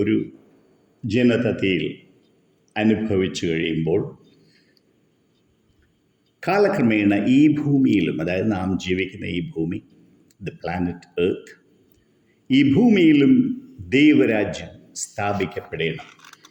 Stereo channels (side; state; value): both; identical; correlation 1.00